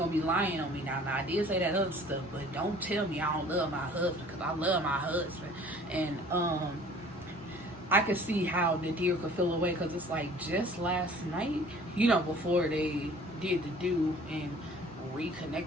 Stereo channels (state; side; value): normal; both; correlation 0.50